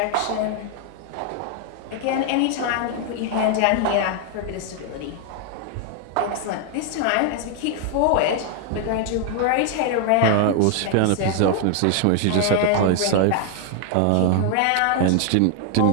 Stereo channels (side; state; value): both; different; correlation 0.00